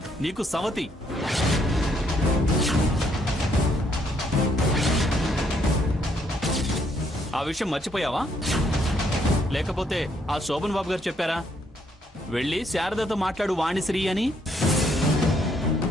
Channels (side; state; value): both; normal; correlation 0.71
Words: నీకు సవతి. ఆ విషయం మర్చిపోయావా? లేకపోతే ఆ శోభన్ బాబు గారు చెప్పారా వెళ్ళి శారదతో మాట్లాడు వాణిశ్రీ అని?